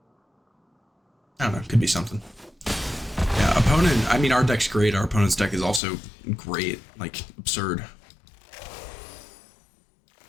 I don't know, could be something. Yeah, opponent, I mean, our deck's great. Our opponent's deck is also great, like, absurd.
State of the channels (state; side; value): drops out; right; at 5.8 s